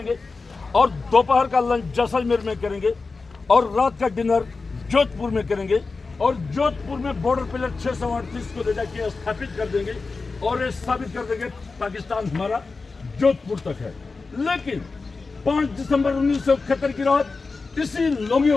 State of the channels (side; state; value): right; quieter; 4.1 dB